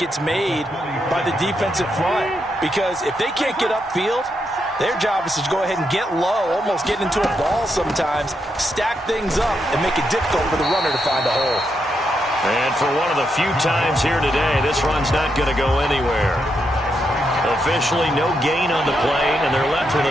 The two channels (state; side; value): normal; both; correlation 0.82